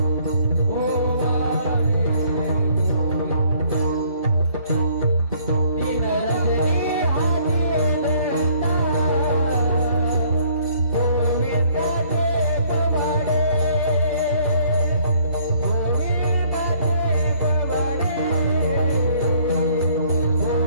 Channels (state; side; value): inverted; both; correlation -0.61